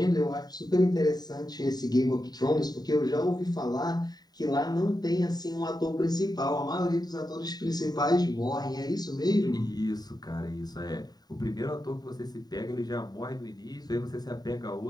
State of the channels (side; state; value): right; late; 0.19 ms